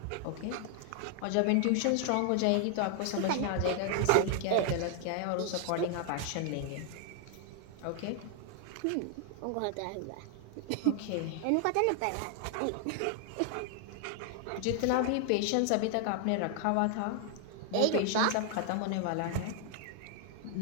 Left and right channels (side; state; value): both; different; correlation 0.00